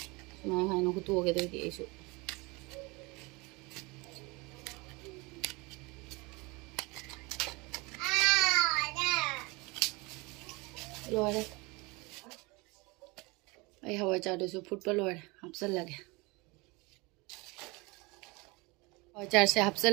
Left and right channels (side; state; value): left; quieter; 25.9 dB